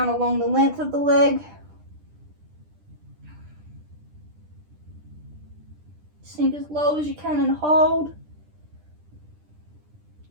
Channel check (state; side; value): late; left; 10 ms